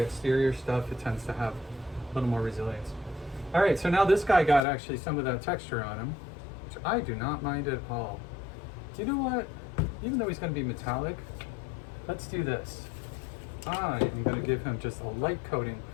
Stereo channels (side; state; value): right; drops out; at 4.6 s